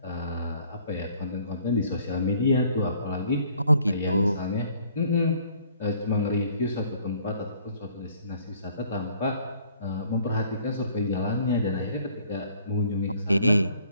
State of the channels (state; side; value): inverted; both; correlation -0.59